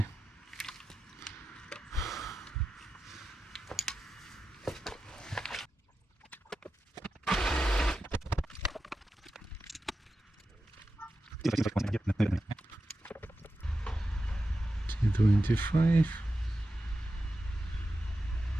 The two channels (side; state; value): both; normal; correlation 0.91